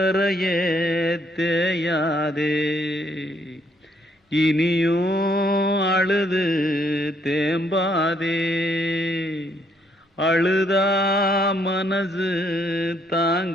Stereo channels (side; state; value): both; normal; correlation 0.70